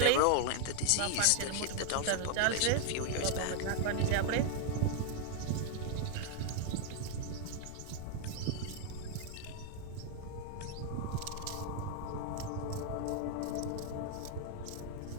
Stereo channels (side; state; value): both; different; correlation 0.00